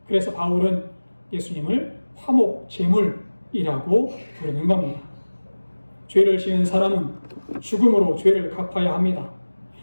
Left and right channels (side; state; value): both; inverted; correlation -1.00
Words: 그래서 바울은 예수님을 화목제물이라고 부르는 겁니다. 죄를 지은 사람은 죽음으로 죄를 갚아야 합니다.